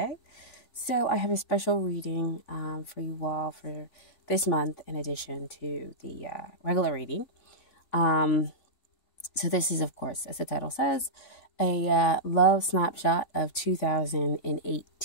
So I have a special reading for you all for this month in addition to the regular reading. So this is, of course, as the title says, a love snapshot of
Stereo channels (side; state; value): right; late; 3.4 ms